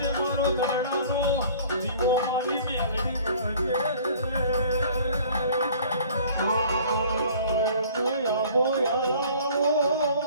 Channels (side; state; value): both; inverted; correlation -0.50